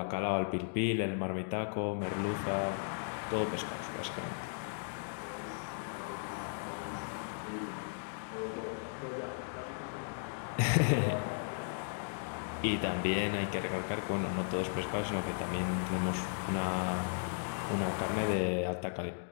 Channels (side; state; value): right; silent; digital silence